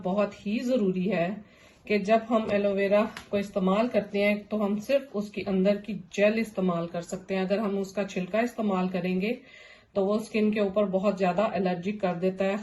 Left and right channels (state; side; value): identical; both; correlation 1.00